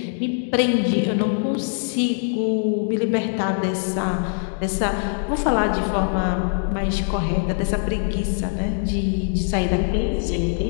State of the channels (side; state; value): right; silent; digital silence